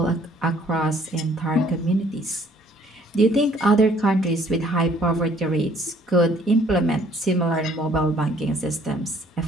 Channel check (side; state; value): both; normal; correlation 0.60